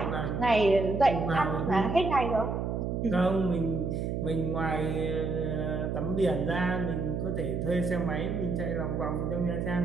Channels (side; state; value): right; noise; hum, 1 dB below the sound